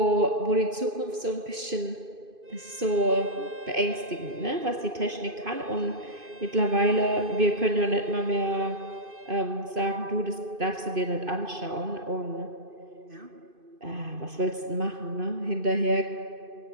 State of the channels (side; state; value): left; late; 2.5 ms